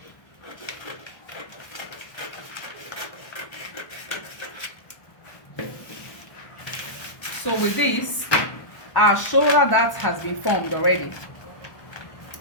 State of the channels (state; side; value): late; right; 1.2 ms